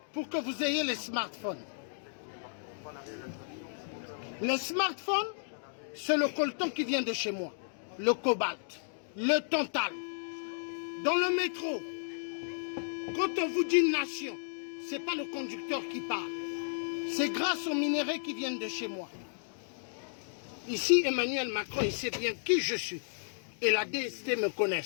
pour que vous ayez les smartphones. Les smartphones, c'est le coltan qui vient de chez moi. Le cobalt, le tantal. Dans le métro, quand on vous dit nation, ce n'est pas le conducteur qui parle. C'est grâce aux minéraux qui viennent de chez moi. Ici, Emmanuel Macron, il sait bien qui je suis. Et la DST me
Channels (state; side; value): silent; right; digital silence